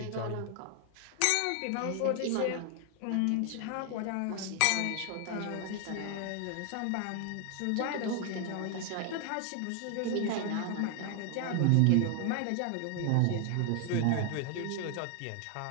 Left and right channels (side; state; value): both; different; correlation 0.00